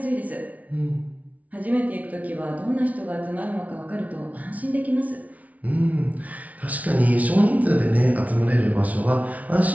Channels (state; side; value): late; left; 0.070 ms